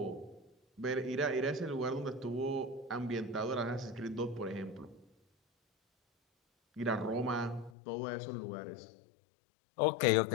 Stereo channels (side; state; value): right; drops out; at 7.7 s